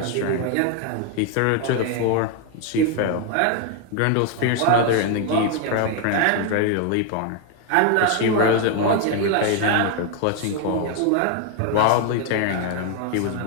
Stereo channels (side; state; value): both; different; correlation 0.01